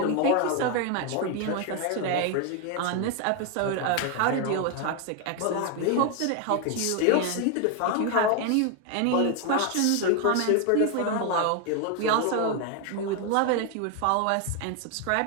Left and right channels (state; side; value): different; both; correlation 0.01